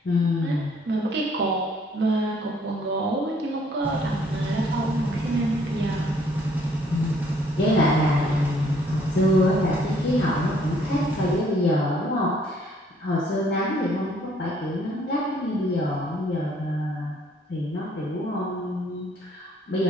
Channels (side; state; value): both; normal; correlation 0.63